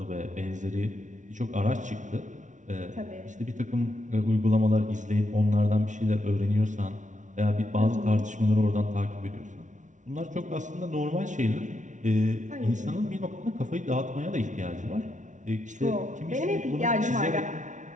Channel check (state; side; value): late; left; 0.36 ms